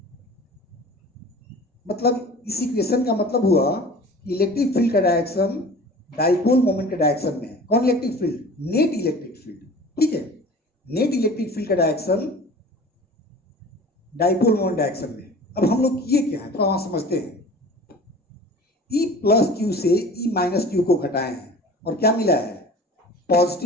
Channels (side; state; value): both; normal; correlation 0.41